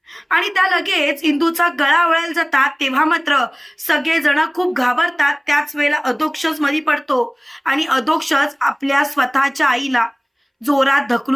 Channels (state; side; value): identical; both; correlation 1.00